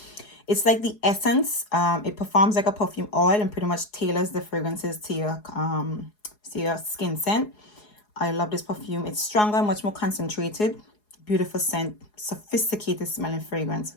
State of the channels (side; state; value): right; late; 4.8 ms